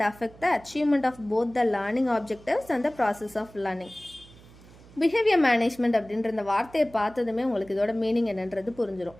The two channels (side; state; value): right; noise; hum, 23 dB below the sound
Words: affect the achievement of both the learning objectives and the process of learning. Behaviour management அப்படின்ற இந்த வார்த்தையை பார்த்ததுமே உங்களுக்கு இதோட மீனிங் என்னன்றது புரிஞ்சிடும்.